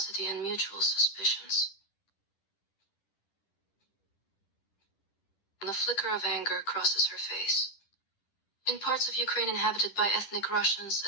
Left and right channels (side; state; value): right; late; 10 ms